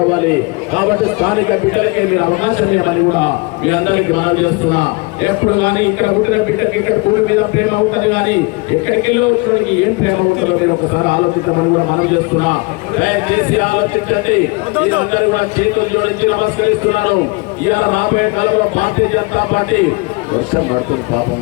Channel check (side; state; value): right; quieter; 27.1 dB